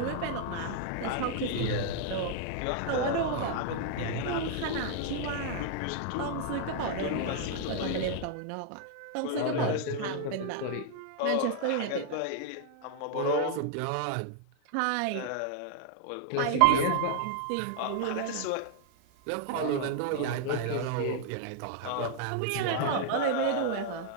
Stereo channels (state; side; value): different; both; correlation 0.00